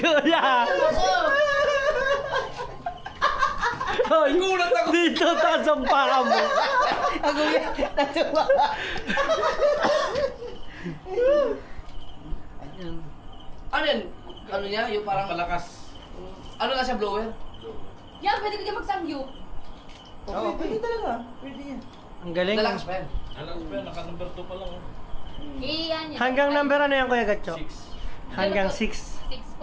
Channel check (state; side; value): identical; both; correlation 1.00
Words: Hoy! Dito taas ang paa mo. Ano yan? Ano niya? Yung parang... Palakas. Ano nga siya, blower? Yan, pwede ko din magsamgyup. Oo, pwede talaga. Pwede yan. Ang galing. Dalakas pa yan. Alam ko pa, naka number 2 pa lang. Iyan yan. Hanggang number ano yan Kuya Gatcho? 6. Hanggang 6. 6